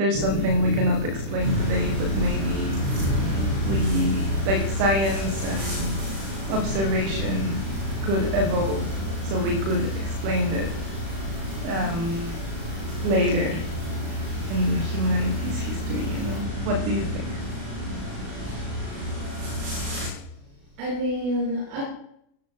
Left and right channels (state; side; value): late; left; 36 ms